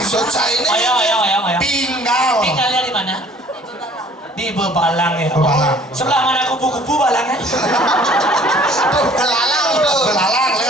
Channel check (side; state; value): both; normal; correlation 0.54